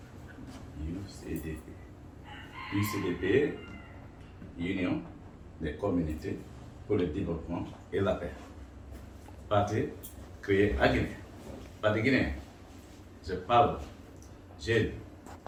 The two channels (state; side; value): identical; both; correlation 1.00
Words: UCDP. UCDP, Union des communautés pour le développement et la paix. Parti créé à Guinée. Parti guinéen. Je parle jeunes,